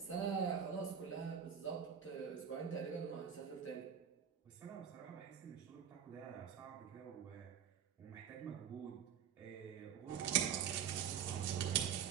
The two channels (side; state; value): left; quieter; 8.1 dB